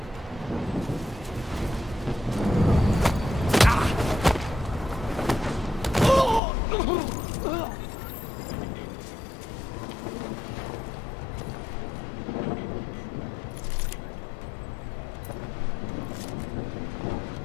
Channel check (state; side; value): drops out; right; at 6.4 s